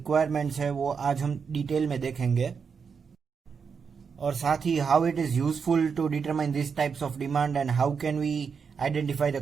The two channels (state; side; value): quieter; left; 6.0 dB